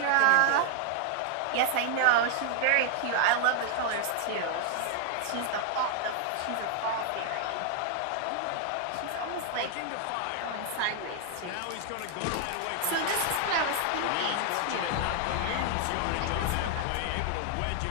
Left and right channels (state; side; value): different; both; correlation 0.00